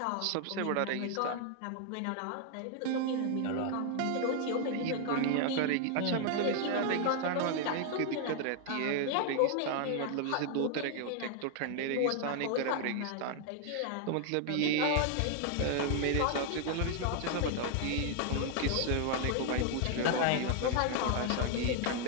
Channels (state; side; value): different; both; correlation 0.00